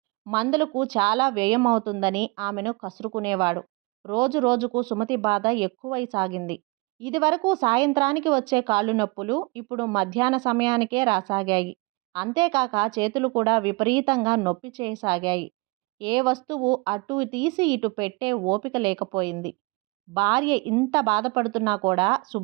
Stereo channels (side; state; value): left; quieter; 26.3 dB